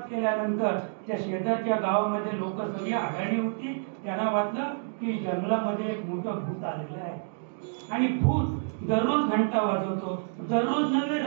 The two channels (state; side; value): silent; left; digital silence